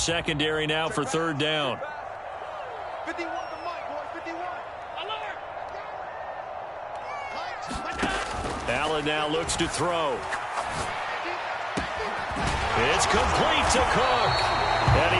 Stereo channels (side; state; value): both; identical; correlation 1.00